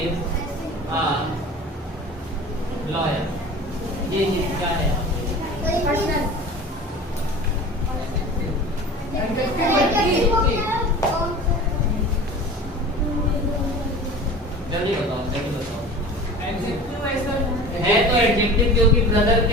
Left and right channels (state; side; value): normal; both; correlation 0.38